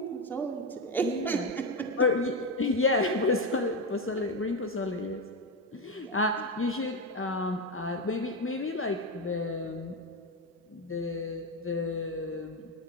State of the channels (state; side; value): normal; both; correlation 0.11